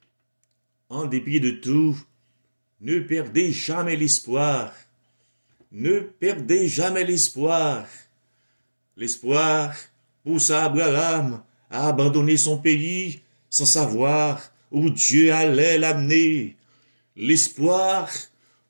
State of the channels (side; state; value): both; inverted; correlation -1.00